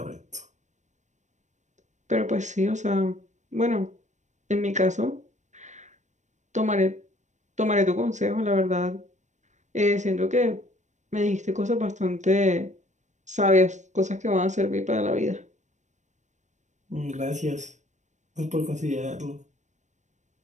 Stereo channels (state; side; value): late; left; 0.35 ms